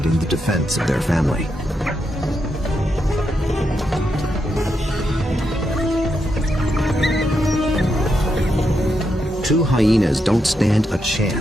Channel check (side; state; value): both; normal; correlation 0.83